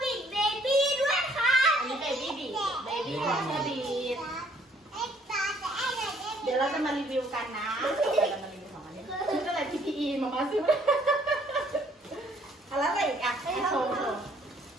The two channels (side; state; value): both; normal; correlation 0.62